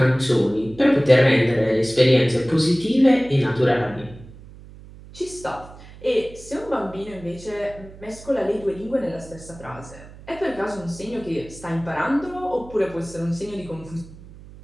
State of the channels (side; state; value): right; noise; hum, 19 dB below the sound